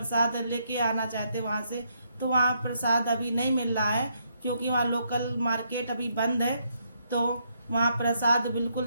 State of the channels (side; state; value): both; inverted; correlation -0.75